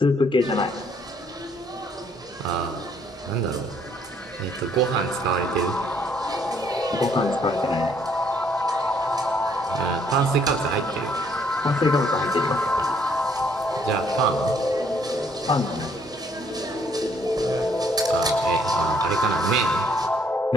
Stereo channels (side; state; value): both; normal; correlation 0.66